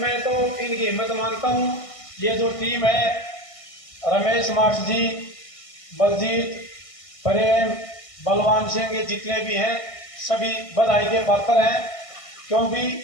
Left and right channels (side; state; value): right; late; 1.6 ms